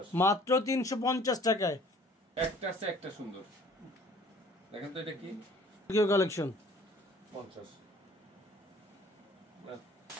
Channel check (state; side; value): normal; both; correlation 0.53